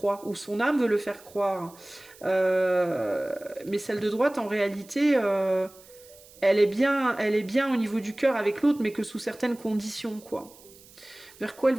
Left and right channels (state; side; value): noise; right; hiss, 23 dB below the sound